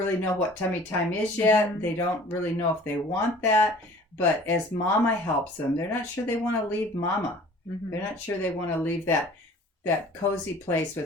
know what tummy time is yet. They don't really know if they want that. But as mama helps them, they're not sure they want to leave mama. They're not sure they want to leave that cozy place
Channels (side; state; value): both; normal; correlation 0.48